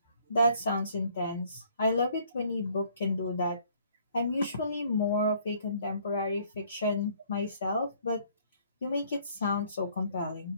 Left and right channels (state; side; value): inverted; both; correlation -0.61